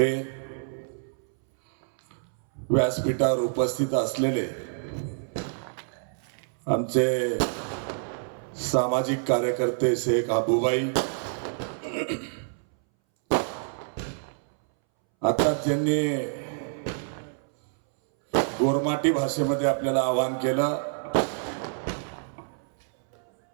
व्यासपीठावर उपस्थित असलेले आमचे सामाजिक कार्यकर्ते शेख आबूबाई, आता ज्यांनी गोरमाटी भाषेमध्ये आपल्याला आवाहन केलं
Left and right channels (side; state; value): left; silent; 60 dB below the other